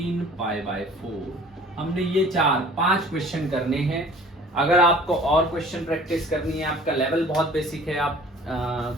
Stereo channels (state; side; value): normal; both; correlation 0.48